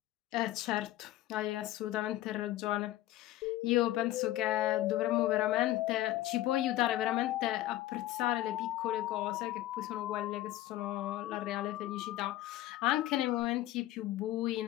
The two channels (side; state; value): right; quieter; 15.2 dB